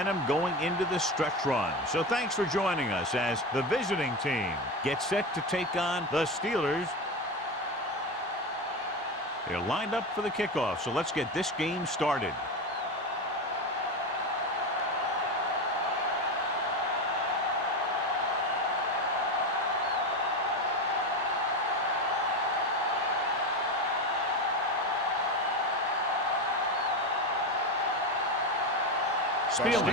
going into the stretch run. So thanks for joining us as the visiting team gets set to take on the Steelers. They're lined up for the kickoff, so let's get this game started.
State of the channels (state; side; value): normal; both; correlation 0.19